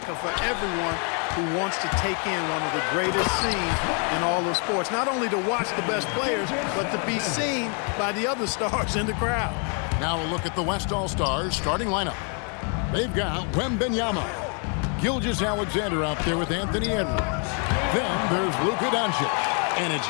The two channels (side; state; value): right; quieter; 39.5 dB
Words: for everyone who wants to take in one of the greatest scenes in all of sports. Not only to watch the best players, but to be seen by the other stars in the crowd. Now a look at the West All-Stars starting lineup. They've got WEMBY, Gilgeous-Alexander out there with Anthony Edwards. Then there's Luka Doncic, and it's